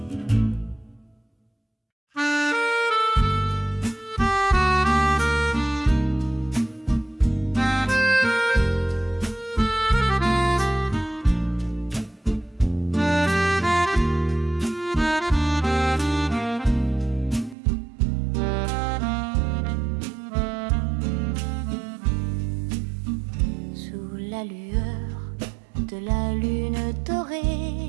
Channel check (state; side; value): drops out; left; at 17.6 s